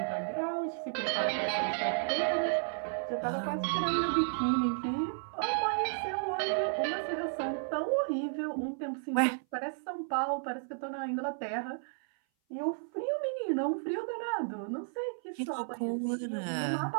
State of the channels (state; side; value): silent; left; 56 dB below the other